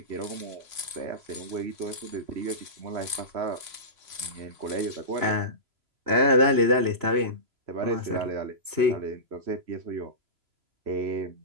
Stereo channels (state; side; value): late; left; 3.0 ms